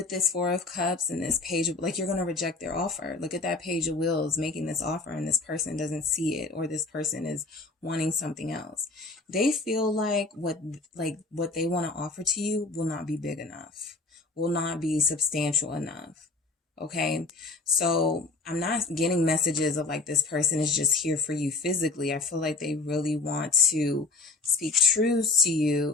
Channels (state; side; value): quieter; right; 3.6 dB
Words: this Four of Cups and this Page of, like, you're going to reject their offer. Look at that Page of Wheels making this offer, and this person doesn't see it, or this person is wanting something else. They feel like what they want to offer to you will not be big enough, will not be substantial enough. Okay. So I'm not getting messages of like this person is just here for you physically. I feel like they really want to speak truths to